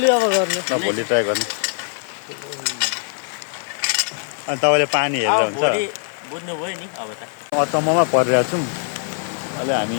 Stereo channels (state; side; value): silent; right; 65 dB below the other